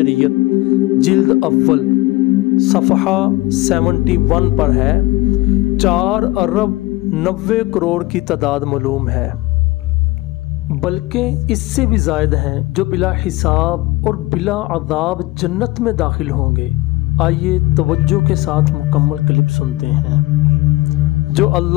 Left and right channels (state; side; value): quieter; right; 20.1 dB